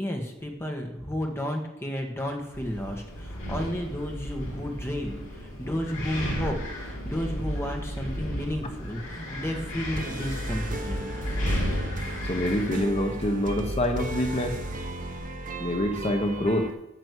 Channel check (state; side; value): normal; both; correlation 0.74